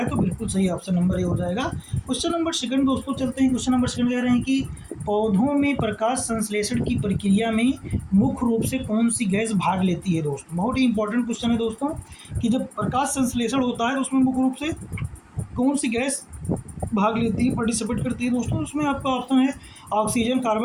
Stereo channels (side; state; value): both; identical; correlation 1.00